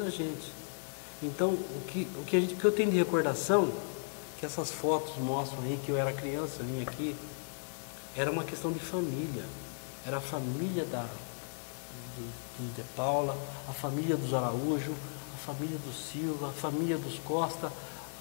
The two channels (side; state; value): right; silent; digital silence